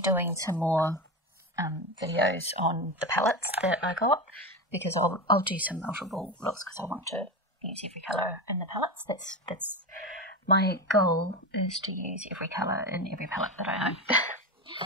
doing some more videos on the palettes that I got, because I'll do some multiple looks because I want to use every colour in the palettes. That's my goal, is to use every colour in every palette that I own.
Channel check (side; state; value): both; normal; correlation 0.20